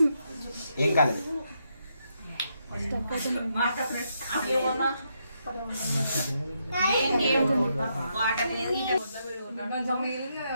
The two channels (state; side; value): inverted; both; correlation -0.79